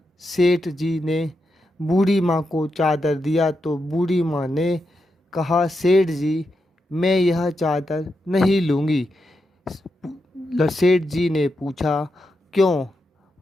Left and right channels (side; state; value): both; normal; correlation 0.86